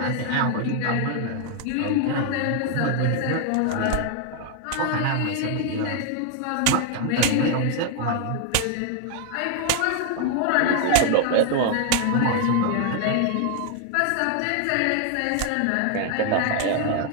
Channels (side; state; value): both; different; correlation 0.00